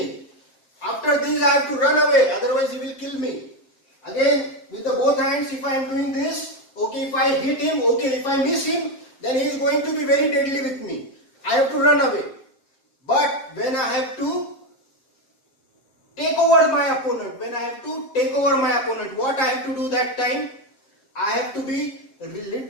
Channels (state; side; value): late; right; 7.7 ms